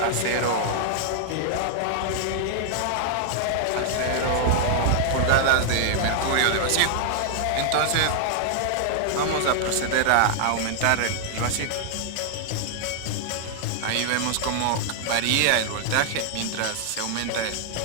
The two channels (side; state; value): both; different; correlation -0.01